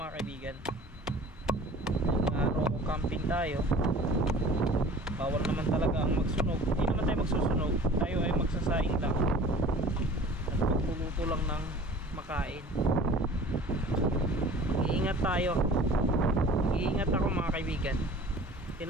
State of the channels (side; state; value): both; normal; correlation 0.45